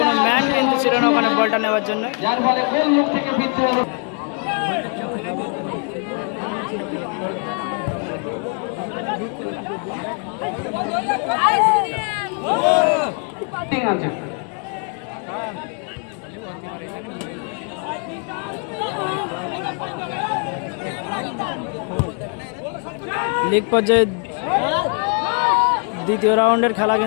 ম্যান কিন্তু ছিল না ওখানে বলটা নেওয়ার জন্য। যার ফলে গোল মুখ থেকে ফিরতে হলো। ঠিক আছে, লিগ পর্যায়ে দ্বিতীয় রাউন্ডের খেলা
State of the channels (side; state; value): right; quieter; 39.5 dB